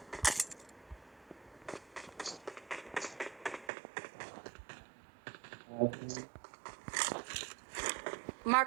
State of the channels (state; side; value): drops out; left; at 3.7 s